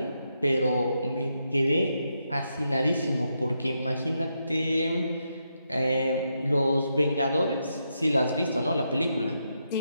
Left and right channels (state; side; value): inverted; both; correlation -0.82